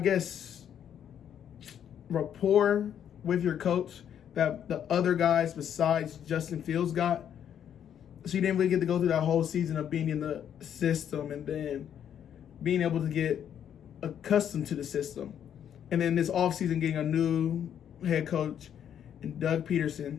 rapport with your coach that the other guys besides Justin Fields got. So you didn't really get to go through that whole season of being in the system and then being able to get accustomed to the system. And then this offseason getting a new head coach and Doug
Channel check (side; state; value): right; quieter; 9.3 dB